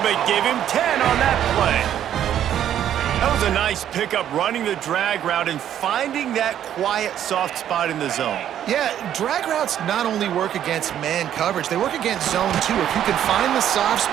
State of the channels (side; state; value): left; quieter; 10.5 dB